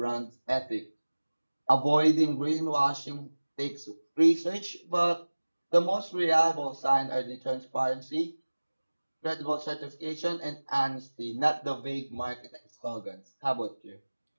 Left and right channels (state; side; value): inverted; both; correlation -1.00